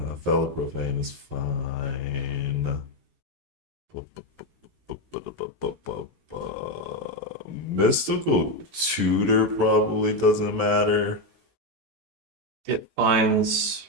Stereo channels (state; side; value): late; left; 16 ms